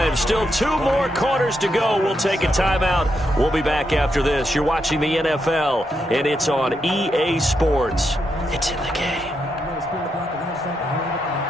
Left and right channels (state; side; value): normal; both; correlation 0.82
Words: Still 2 more quarters to go. We'll take a timeout. We'll be back after this. You're watching the NFL, and it's on EA Sports. It's in the game.